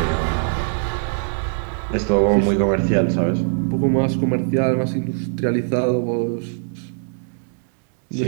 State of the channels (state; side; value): silent; left; digital silence